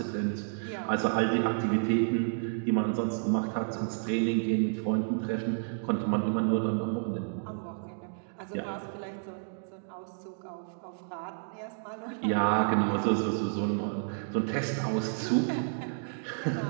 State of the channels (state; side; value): silent; left; digital silence